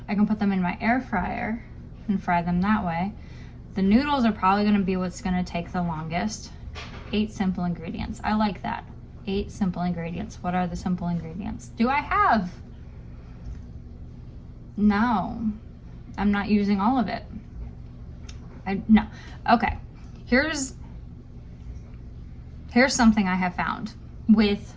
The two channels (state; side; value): identical; both; correlation 1.00